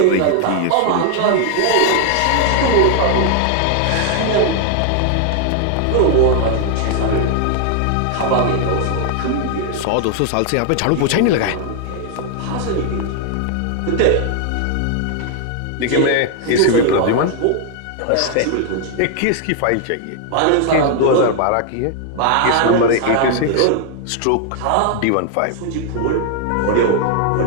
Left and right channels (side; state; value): both; different; correlation 0.00